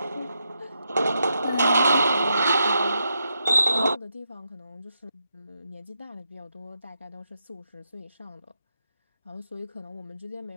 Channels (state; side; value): inverted; both; correlation -0.83